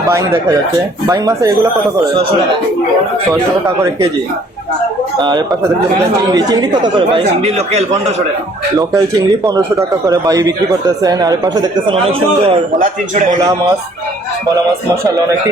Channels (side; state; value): both; normal; correlation 0.59